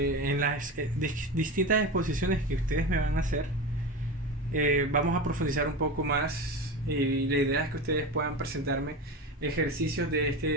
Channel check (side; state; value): both; normal; correlation 0.24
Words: las distintas exposiciones que ustedes me van a hacer, vamos a profundizar un poco más y la idea es que ustedes puedan presentarme ejercicios de